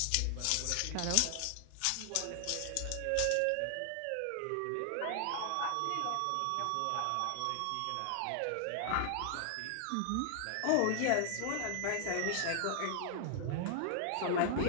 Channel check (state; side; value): different; both; correlation 0.00